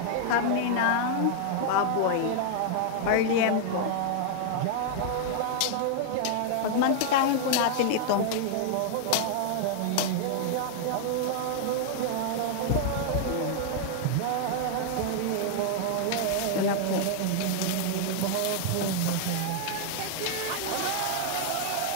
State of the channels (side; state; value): both; different; correlation -0.01